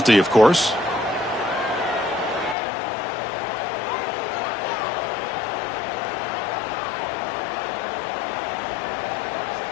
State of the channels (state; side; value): drops out; right; at 2.6 s